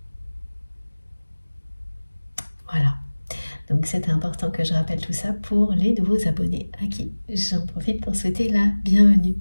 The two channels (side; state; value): both; inverted; correlation -1.00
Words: Voilà. Donc c'est important que je rappelle tout ça pour les nouveaux abonnés à qui j'en profite pour souhaiter la bienvenue.